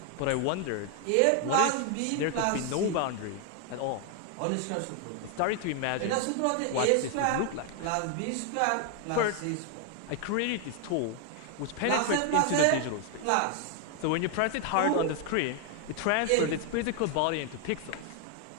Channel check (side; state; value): both; different; correlation 0.00